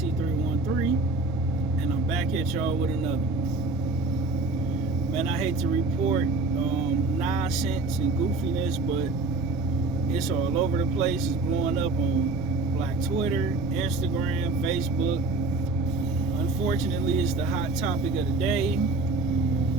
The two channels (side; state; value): left; quieter; 3.2 dB